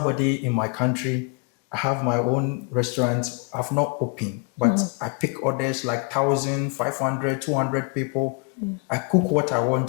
in my country, I have my own restaurant, I've not opened, but I pick orders like 1,000, 500, 200 people. I cook what I want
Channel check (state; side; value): quieter; right; 33.1 dB